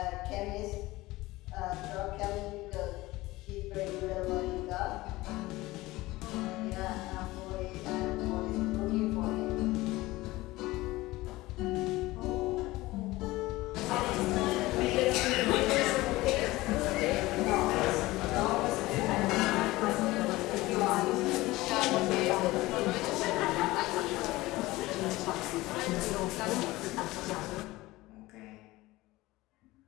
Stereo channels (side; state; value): right; quieter; 19.2 dB